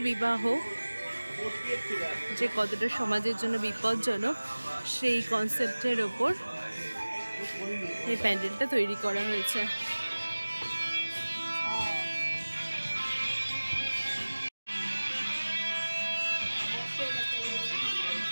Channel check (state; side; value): inverted; both; correlation -1.00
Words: বিবাহ যে কতটা সমাজের জন্য বিপজ্জনক, সেই কনসেপ্টের ওপর এই প্যান্ডেলটা তৈরি করা হয়েছে।